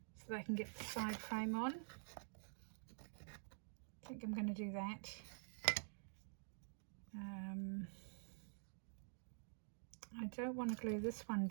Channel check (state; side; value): silent; left; digital silence